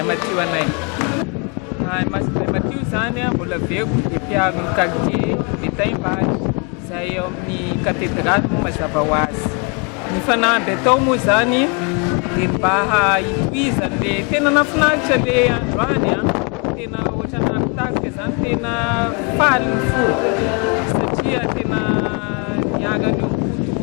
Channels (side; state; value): right; quieter; 33.6 dB